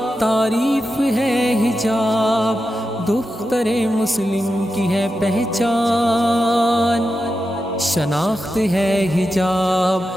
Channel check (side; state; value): both; normal; correlation 0.89